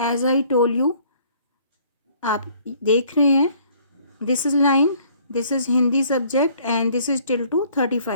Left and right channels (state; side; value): inverted; both; correlation -0.58